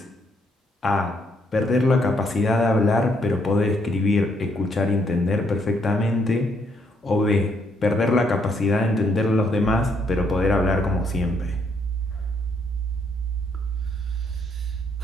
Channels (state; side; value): normal; both; correlation 0.72